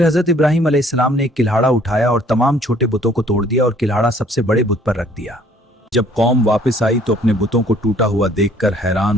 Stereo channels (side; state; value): both; normal; correlation 0.59